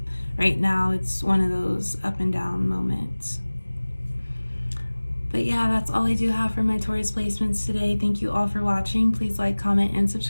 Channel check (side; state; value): both; inverted; correlation -1.00